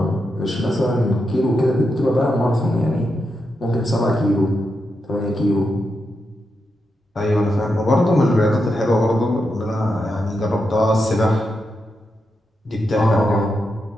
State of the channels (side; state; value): both; normal; correlation 0.86